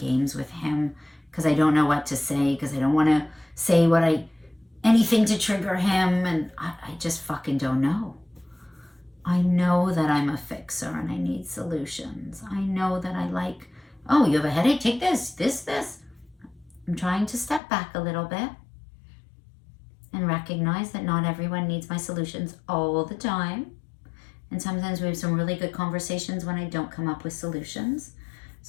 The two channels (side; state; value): right; drops out; at 17.6 s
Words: with him because I don't know what to say, because I don't want to say anything to trigger him, and I just fucking don't know. I know that I'm a fixer and I need solutions. I know that oh, you have a headache? Take this. I'm trying to step back a little bit and recognize that not everyone needs my solutions all the time. And sometimes we have some really good conversations when I don't come up with solutions.